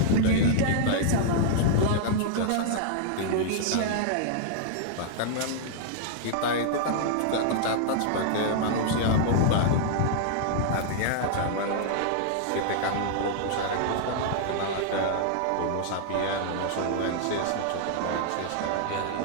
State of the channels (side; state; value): both; different; correlation -0.01